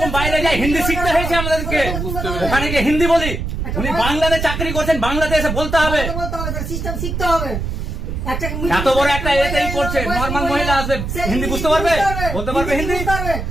বাইরে যাই হিন্দি শিখতে হয়েছে আমাদেরকে, ওখানে গিয়ে হিন্দি বলি। উনি বাংলাতে চাকরি করছেন, বাংলাতে এসে বলতে হবে, সিস্টেম শিখতে হবে। এত বড় একটা এতেই করছে, নর্মাল মহিলা আসবে হিন্দি বুঝতে পারবে, বলতে পারবে হিন্দি,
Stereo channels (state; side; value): noise; right; rumble, 4 dB below the sound